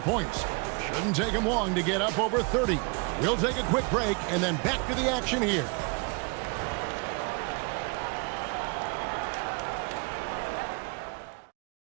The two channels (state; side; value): quieter; left; 32.3 dB